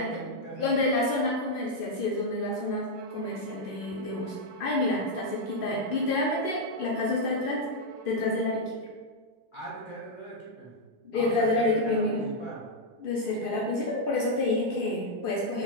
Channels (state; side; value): late; right; 2.5 ms